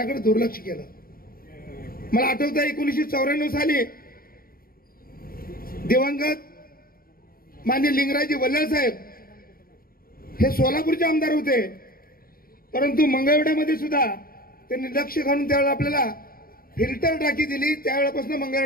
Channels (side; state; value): right; late; 0.43 ms